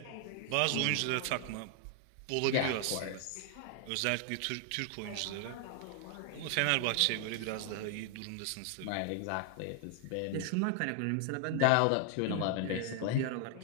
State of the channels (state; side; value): different; both; correlation 0.00